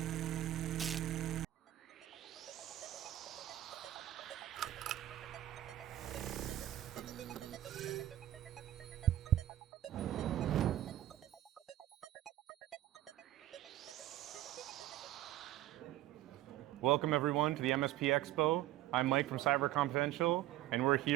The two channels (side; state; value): left; quieter; 14.2 dB